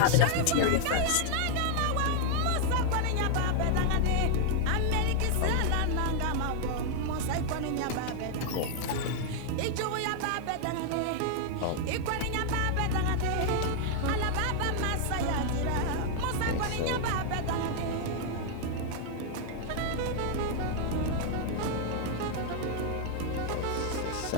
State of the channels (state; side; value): different; both; correlation 0.00